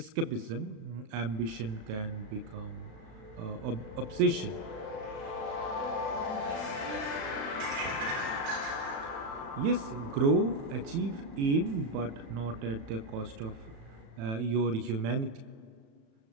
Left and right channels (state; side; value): late; left; 36 ms